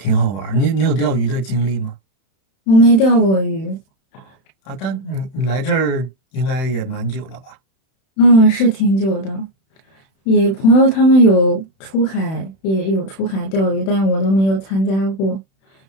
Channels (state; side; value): late; right; 31 ms